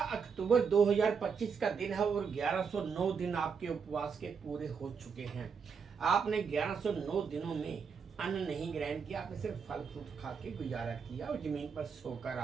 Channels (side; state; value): left; quieter; 6.1 dB